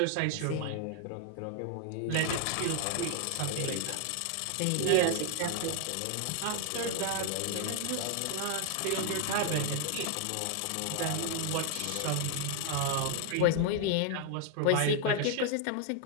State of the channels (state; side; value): different; both; correlation 0.00